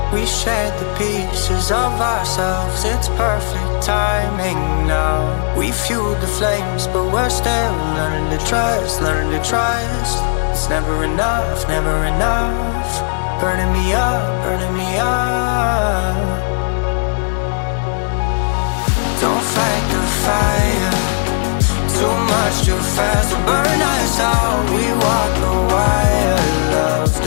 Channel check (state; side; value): silent; right; digital silence